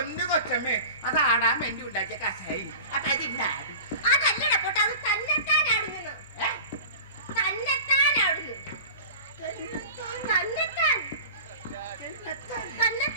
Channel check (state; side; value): inverted; both; correlation -0.37